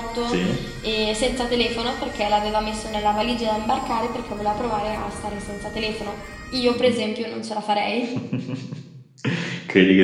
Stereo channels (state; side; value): identical; both; correlation 1.00